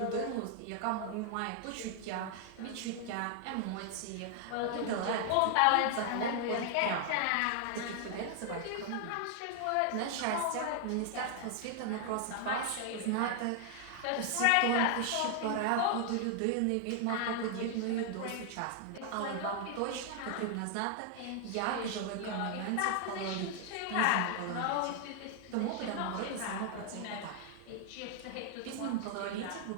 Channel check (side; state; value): both; different; correlation 0.00